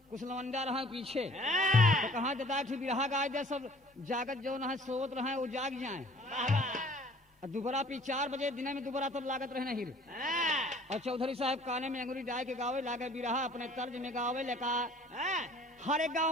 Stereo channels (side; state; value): both; normal; correlation 0.52